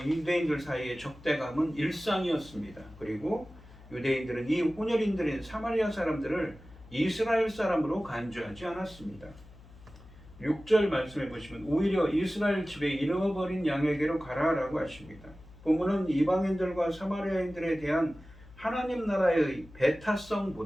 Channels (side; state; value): left; noise; hum, 21 dB below the sound